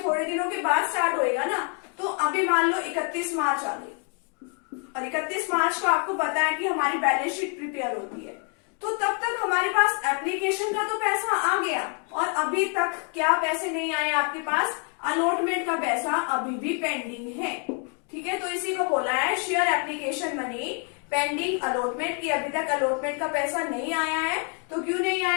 दिनों के बाद स्टार्ट होएगा ना। तो अभी मान लो 31 मार्च आ गई, और 31 मार्च को आपको पता है कि हमारी बैलेंस शीट प्रिपेयर होती है, तो तब तक हमारे पास एप्लीकेशन का तो पैसा आ गया, और अभी तक क्या पैसे नहीं आए आपके पास, अलॉटमेंट का पैसा अभी भी पेंडिंग है, ठीक है। तो इसी को बोला है share application money pending allotment, की अभी तक अलॉटमेंट का पैसा नहीं आया है। तो क्यों नहीं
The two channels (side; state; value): right; quieter; 39.0 dB